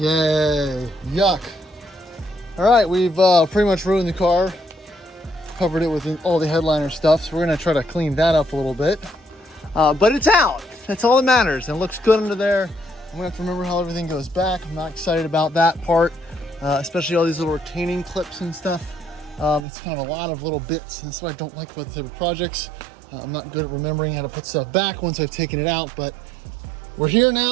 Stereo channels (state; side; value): drops out; left; at 19.7 s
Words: Yay, yuck. All right, we've pretty much ruined the car. Covered it with all the headliner stuff, so we're gonna try to clean that up a little bit. But it's out, that's all that matters, and it looks good under there. I'm gonna have to remember how everything goes back. I'm not excited about that part, especially all these little retaining clips and stuff. It's kind of a lot of little bits, and that's what I don't like about the type of projects. I'm not good at remembering how to put stuff back once I've taken it out, but we're here